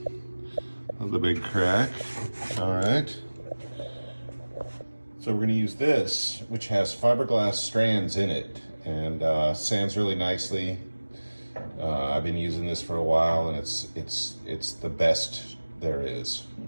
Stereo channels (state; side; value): inverted; both; correlation -1.00